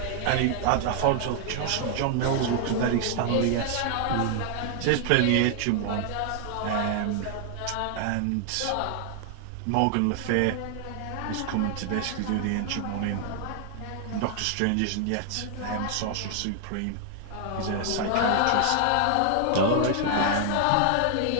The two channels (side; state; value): both; different; correlation 0.00